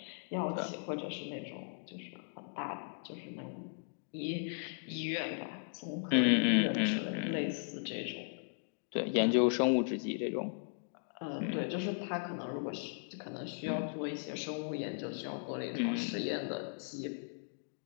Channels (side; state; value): right; silent; digital silence